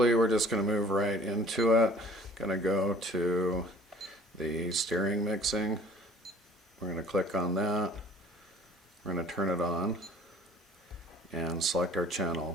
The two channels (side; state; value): both; normal; correlation 0.50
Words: we're just going to move right into it. Going to go to the steering mixing. We're going to click on that. We're going to turn it on and select our